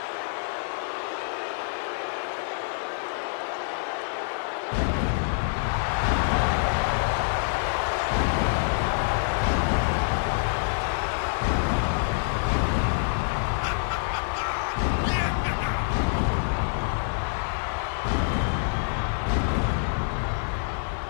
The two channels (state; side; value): silent; right; 61 dB below the other